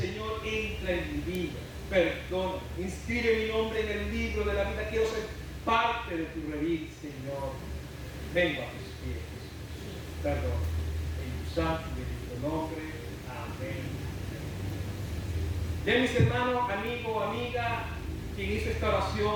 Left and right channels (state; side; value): identical; both; correlation 1.00